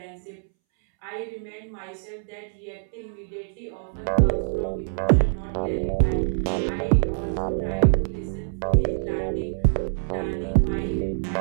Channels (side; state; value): left; silent; 62 dB below the other